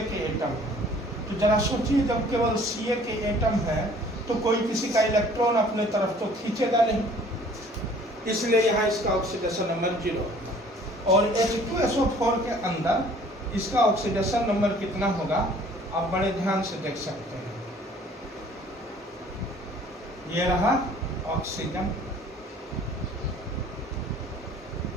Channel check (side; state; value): both; normal; correlation 0.53